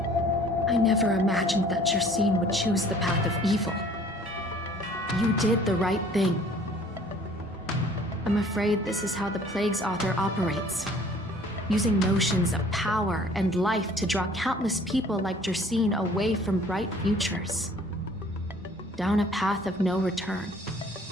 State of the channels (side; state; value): both; normal; correlation 0.53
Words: I never imagined that Jersine would choose the path of evil. You did the right thing. I'm afraid this is how the Plague's author operates, using notions of power and life to draw countless people like Jersine away from bright futures, down a path of no return.